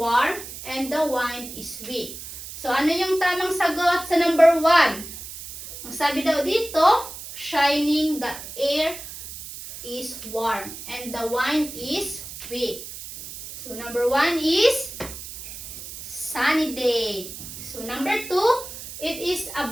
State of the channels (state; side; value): noise; right; hiss, 11 dB below the sound